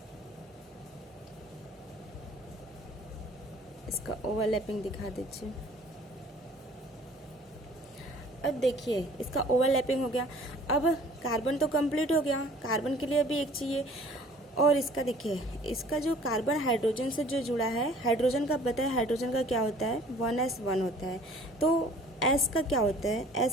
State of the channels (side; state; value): both; normal; correlation 0.52